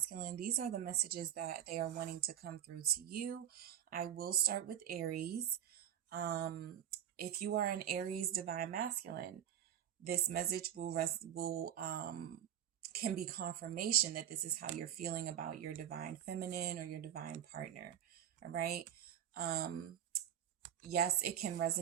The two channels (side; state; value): left; quieter; 10.3 dB